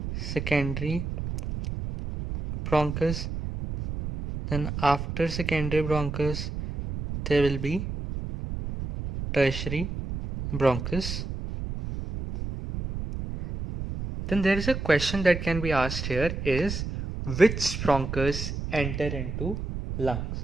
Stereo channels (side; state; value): right; noise; rumble, 5 dB below the sound